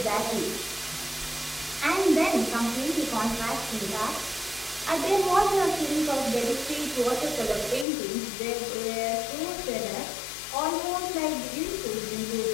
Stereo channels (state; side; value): drops out; right; at 7.9 s